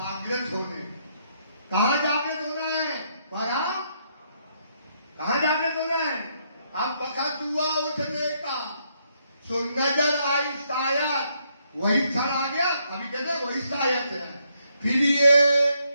होने। कहाँ जागृत होना है? परम। कहाँ जागृत होना है? अब वक्त हुआ उठने का, सो नजर आई शायद, वही क्षण आ गया। अभी कहते वही शायद है। फिर ये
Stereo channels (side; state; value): both; inverted; correlation -0.74